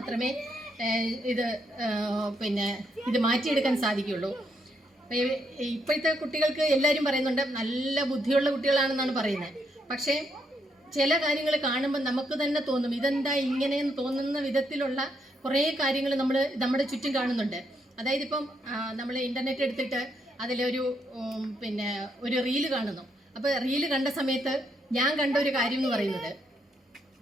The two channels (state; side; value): normal; both; correlation 0.77